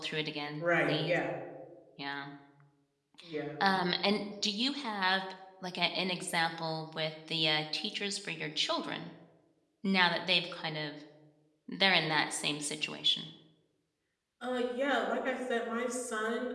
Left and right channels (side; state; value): both; identical; correlation 1.00